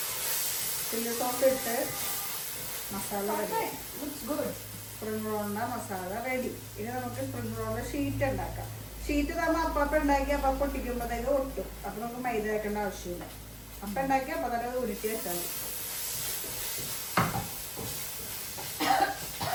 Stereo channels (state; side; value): identical; both; correlation 1.00